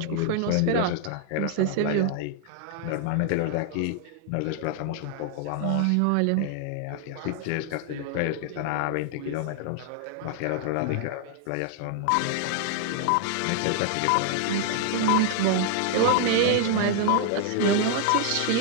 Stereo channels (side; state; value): both; different; correlation 0.00